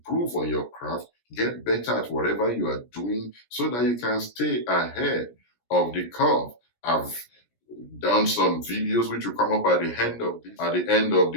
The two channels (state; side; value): late; right; 17 ms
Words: on your craft, get better at whatever you are doing so that you can stay ahead of the curve. I've done some videos which will come up at the end of